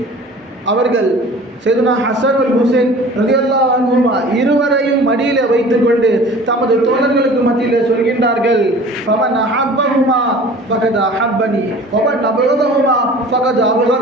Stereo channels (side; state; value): both; normal; correlation 0.44